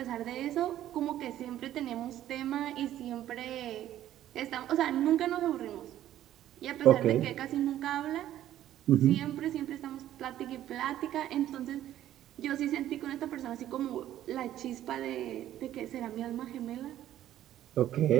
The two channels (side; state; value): left; quieter; 12.5 dB